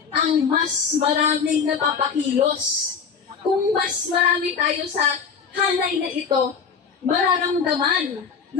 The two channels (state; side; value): quieter; right; 6.1 dB